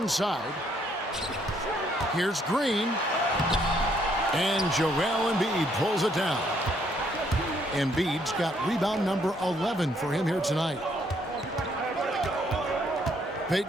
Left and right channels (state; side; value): normal; both; correlation 0.69